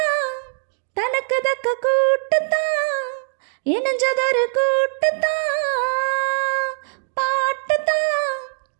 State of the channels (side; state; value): left; silent; digital silence